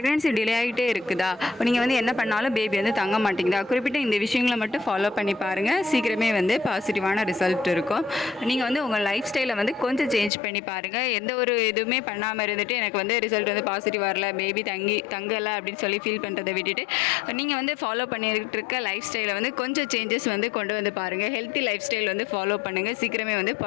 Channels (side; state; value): right; drops out; at 10.3 s